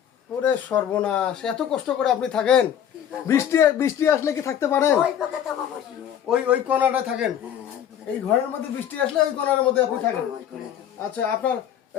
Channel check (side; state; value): right; quieter; 9.6 dB